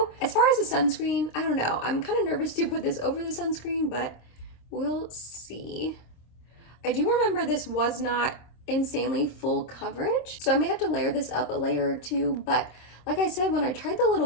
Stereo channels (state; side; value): late; right; 26 ms